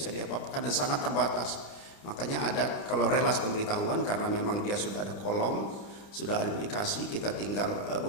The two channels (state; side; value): late; right; 29 ms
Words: diapa-apakan dan sangat terbatas. Makanya ada kalau relas pemberitahuan, karena memang dia sudah ada kolom, sudah ada aplikasi, kita tinggal